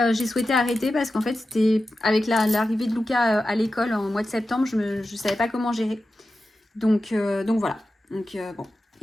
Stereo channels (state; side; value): normal; both; correlation 0.92